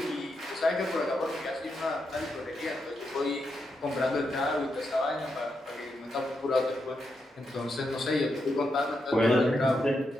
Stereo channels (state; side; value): normal; both; correlation 0.84